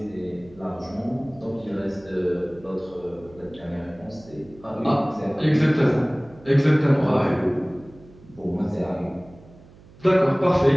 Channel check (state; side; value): noise; right; hum, 23 dB below the sound